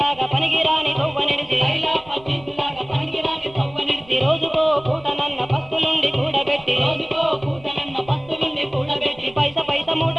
పనికిరాని కొవ్వ నిడిచి పైలా పచ్చిలాగా పనికిరాని తవ్వ నడిచి రోజుకో పూటనన్న పస్తులుండి కూడబెట్టి రోజుకో పూటనన్న పత్తు నుండి కూడబెట్టి పైస పైస మూట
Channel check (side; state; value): right; noise; rumble, 23 dB below the sound